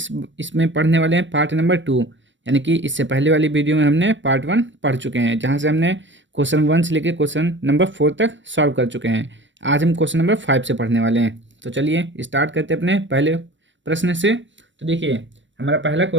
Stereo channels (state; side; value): late; left; 0.54 ms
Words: पढ़ने वाले हैं पार्ट नंबर 2। यानी कि इससे पहले वाली वीडियो में हमने पार्ट 1 पढ़ चुके हैं, जहां से हमने क्वेश्चन 1 से लेकर क्वेश्चन नंबर 4 तक सॉल्व कर चुके हैं। आज हम क्वेश्चन नंबर 5 से पढ़ने वाले हैं। तो चलिए स्टार्ट करते हैं अपने पहले प्रश्न से। तो देखिए, हमारा पहला